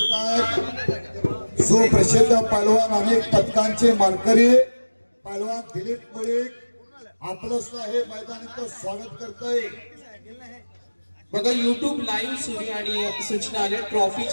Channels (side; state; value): both; inverted; correlation -1.00